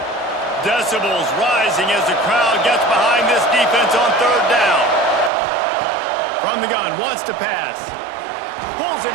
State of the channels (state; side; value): drops out; left; at 5.3 s